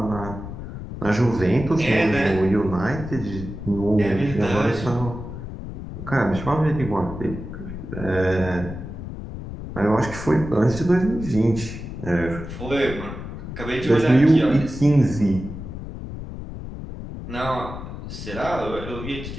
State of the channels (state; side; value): noise; left; rumble, 9 dB below the sound